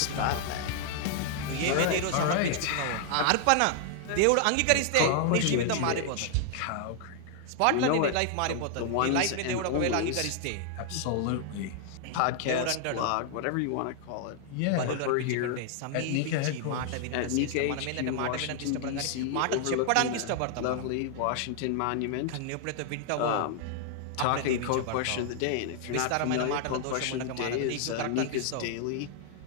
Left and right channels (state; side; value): different; both; correlation 0.00